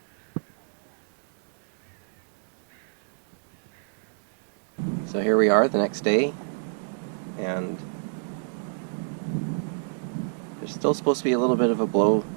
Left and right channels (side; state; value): left; silent; 59 dB below the other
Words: So here we are the next day, and there's still supposed to be a little bit of a blow